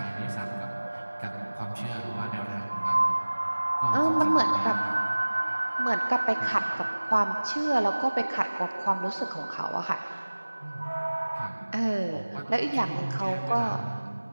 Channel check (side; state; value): both; inverted; correlation -1.00